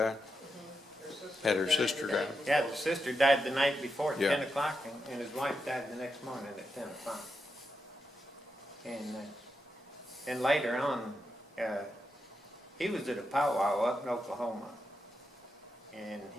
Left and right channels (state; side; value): normal; both; correlation 0.86